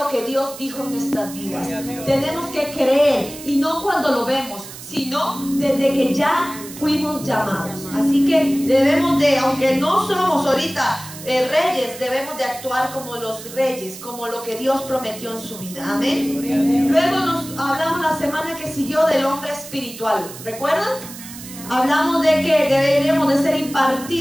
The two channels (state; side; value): noise; right; hiss, 14 dB below the sound